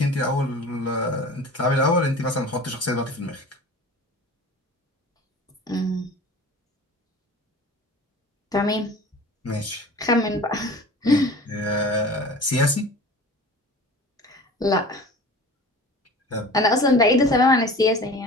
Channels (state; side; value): normal; both; correlation 0.40